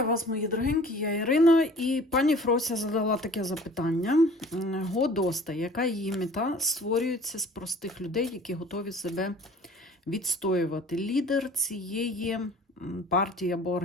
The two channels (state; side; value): normal; both; correlation 0.48